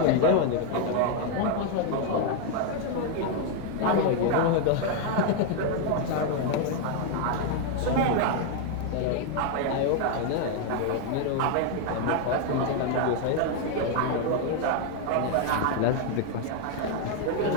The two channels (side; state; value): both; different; correlation 0.01